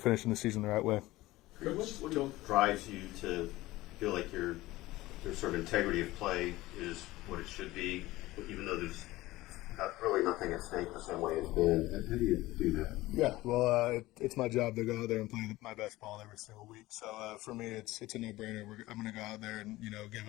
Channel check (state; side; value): quieter; right; 18.1 dB